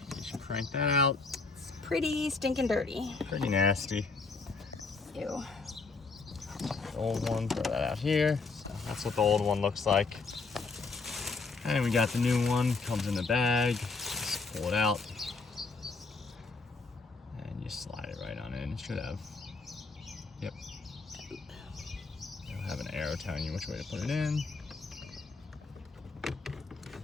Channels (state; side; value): quieter; right; 4.2 dB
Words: You should crank that out. It's pretty stinking dirty. Pretty nasty. Ew. The old one, throw that out here. So that's what the old one looks like. And we got the new one, comes in the bag. Just pull it out. And you slide it right on in. It should have, yep. It'll have an arrow telling you which way to put it in.